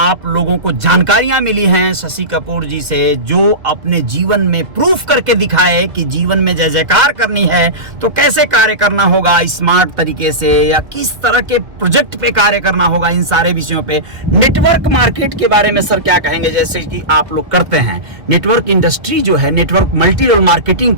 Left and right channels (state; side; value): late; left; 1.8 ms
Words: लोगों को जानकारियां मिली हैं शशि कपूर जी से, जो अपने जीवन में प्रूफ करके दिखाए कि जीवन में जय जयकार करनी है तो कैसे कार्य करना होगा स्मार्ट तरीके से, या किस तरह के प्रोजेक्ट पे कार्य करना होगा। इन सारे विषयों पे नेटवर्क मार्केट के बारे में सर क्या कहेंगे, जैसे कि आप लोग करते हैं नेटवर्क इंडस्ट्री जो है, नेटवर्क मल्टी लेवल मार्केटिंग